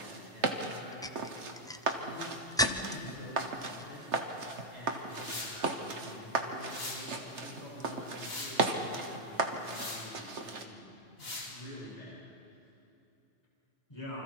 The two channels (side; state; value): both; normal; correlation -0.03